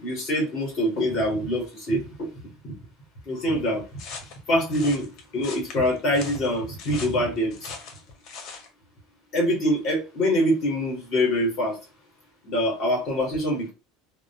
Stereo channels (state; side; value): normal; both; correlation 0.38